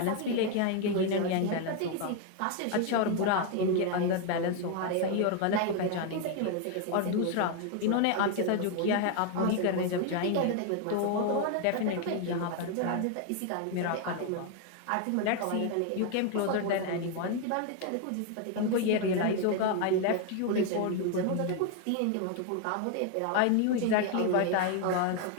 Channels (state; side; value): different; both; correlation 0.01